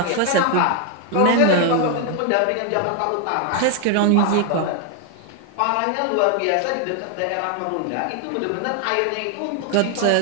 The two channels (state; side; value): different; both; correlation 0.01